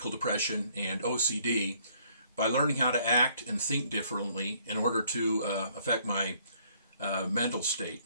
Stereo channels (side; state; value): both; inverted; correlation -0.64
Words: depression, and OCD by learning how to act and think differently in order to affect my mental state.